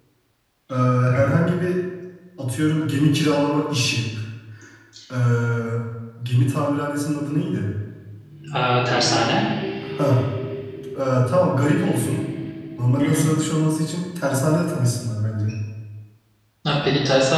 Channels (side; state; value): both; identical; correlation 1.00